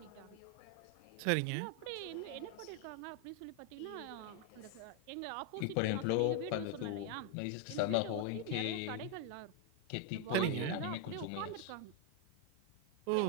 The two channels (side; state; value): both; different; correlation 0.01